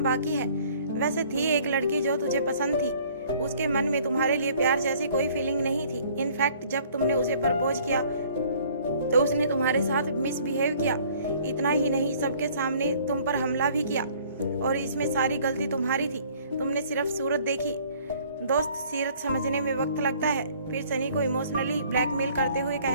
बाकी है। वैसे थी एक लड़की जो तुझे पसंद थी, उसके मन में तुम्हारे लिए प्यार जैसी कोई फीलिंग नहीं थी। इनफैक्ट जब तुमने उसे प्रपोज किया तो उसने तुम्हारे साथ मिसबिहेव किया। इतना ही नहीं, सबके सामने तुम पर हमला भी किया और इसमें सारी गलती तुम्हारी थी। तुमने सिर्फ सूरत देखी। दोस्त, सीरत समझने में वक्त लगता है। फिर सनी को इमोशनली ब्लैकमेल करते हुए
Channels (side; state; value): both; inverted; correlation -0.56